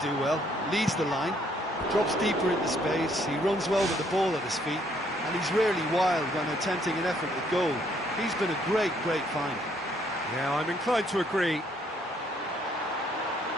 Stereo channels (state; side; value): normal; both; correlation 0.67